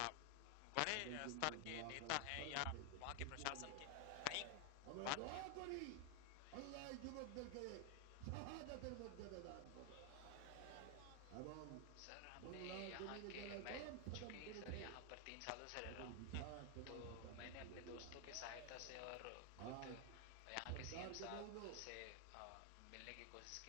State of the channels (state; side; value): different; both; correlation 0.00